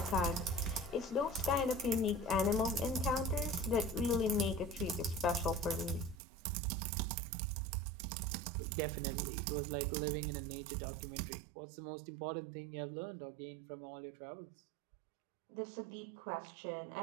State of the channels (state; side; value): drops out; left; at 6.2 s